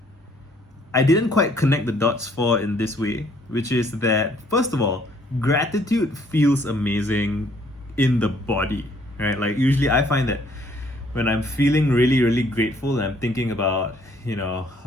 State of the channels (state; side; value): normal; both; correlation 0.63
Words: I didn't quite connect the dots for in this way, which is that, first of all, gratitude feels amazing in the body, right? Like, usually I find that when I'm feeling really, really grateful and I'm thinking about,